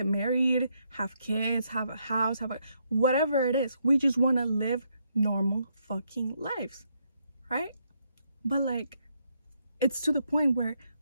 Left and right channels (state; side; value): inverted; both; correlation -0.76